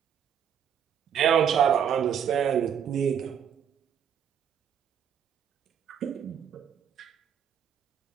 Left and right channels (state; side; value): quieter; left; 8.4 dB